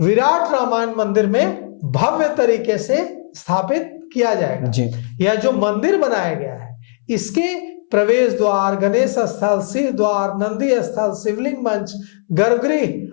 रामायण मंदिर में भव्य तरीके से स्थापित किया जाएगा। यह जो मंदिर बनाया गया है, इसके प्रवेश द्वार, गणेश स्थल, सिंह द्वार, नंदी स्थल, शिवलिंग मंच,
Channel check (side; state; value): right; silent; 66 dB below the other